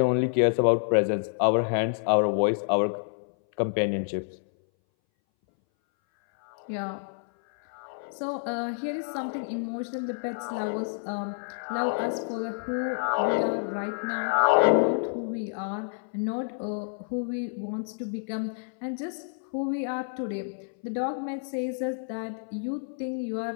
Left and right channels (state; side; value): silent; right; 59 dB below the other